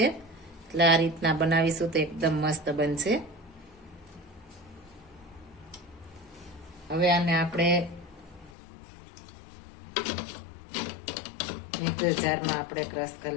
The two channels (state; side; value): drops out; right; at 8.5 s